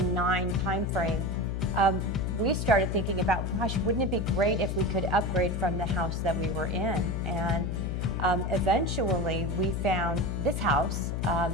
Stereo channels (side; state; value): left; noise; hum, 1 dB below the sound